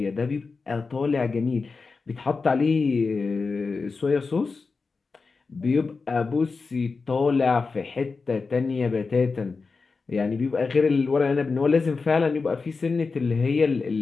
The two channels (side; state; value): right; quieter; 4.4 dB